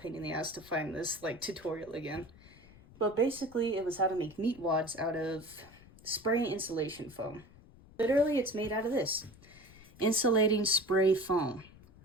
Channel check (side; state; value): left; noise; rumble, 23 dB below the sound